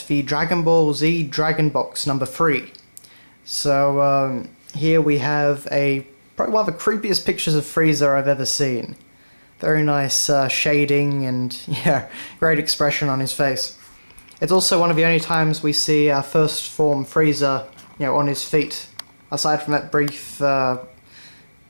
the Dragon Ball Z Dragon Box number 3. So here we have probably one of the creepiest pictures of Frieza I've ever seen. Very nice shading and yeah, great expression on his face. It's also one of the only times we see our first form Frieza, on his feet. Aside from that brief, the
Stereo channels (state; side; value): inverted; both; correlation -1.00